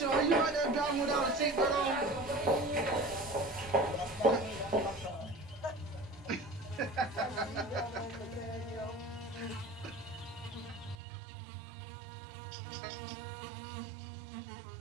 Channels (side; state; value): left; drops out; at 11.0 s